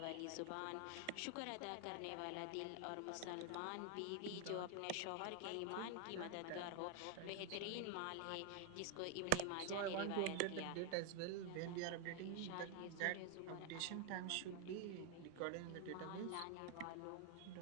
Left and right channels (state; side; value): different; both; correlation 0.01